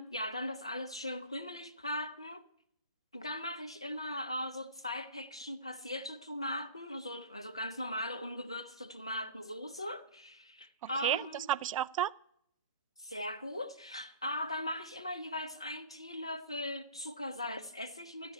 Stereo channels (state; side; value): inverted; both; correlation -0.41